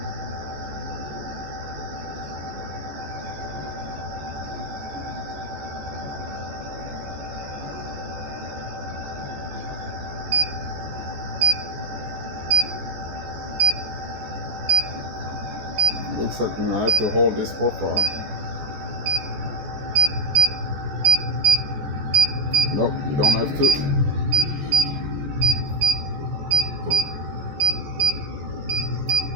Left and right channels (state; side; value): late; left; 14 ms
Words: Looks like I have to hold this profile. Nope, you don't have to.